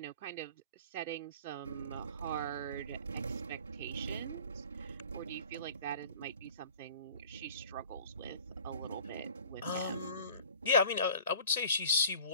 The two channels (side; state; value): both; inverted; correlation -0.45